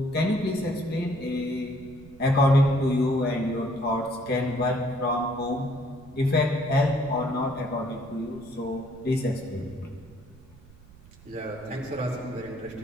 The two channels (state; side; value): noise; right; rumble, 22 dB below the sound